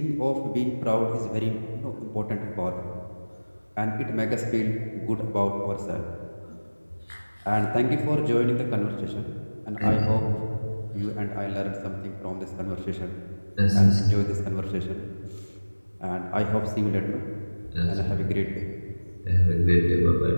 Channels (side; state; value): both; inverted; correlation -1.00